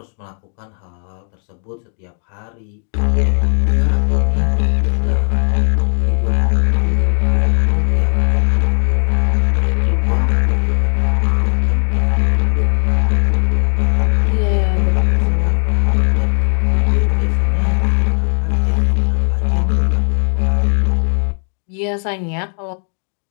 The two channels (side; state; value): right; silent; 57 dB below the other